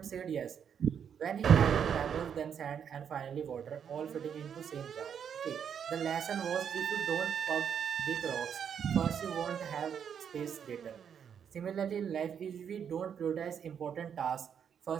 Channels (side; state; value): left; quieter; 7.9 dB